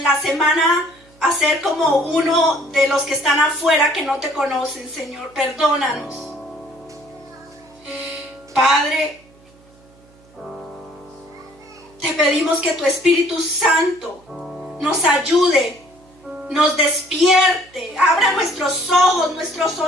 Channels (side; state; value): right; noise; hum, 28 dB below the sound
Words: la semana hacer como uno de los que están afuera que no te conocen, Señor. Perdónanos. Padre, te pedimos que tu Espíritu Santo nos ayude, nos despierte, abra nuestros ojos, nuestros